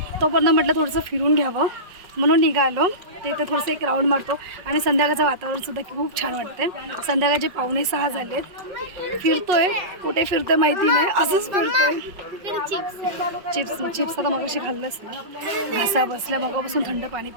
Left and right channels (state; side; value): late; left; 5.4 ms